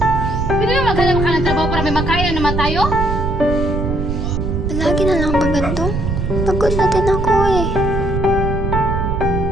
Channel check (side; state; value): right; noise; rumble, 2 dB below the sound